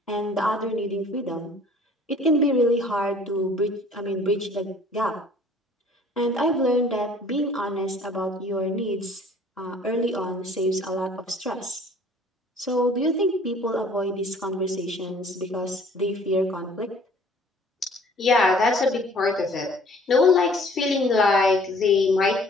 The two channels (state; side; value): normal; both; correlation 0.54